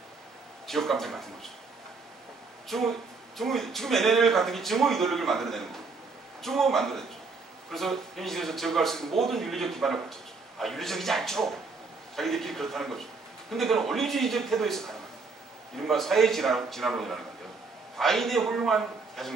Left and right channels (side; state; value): left; quieter; 4.3 dB